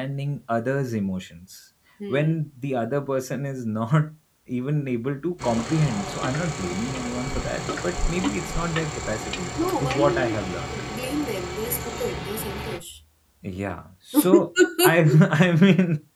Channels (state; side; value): identical; both; correlation 1.00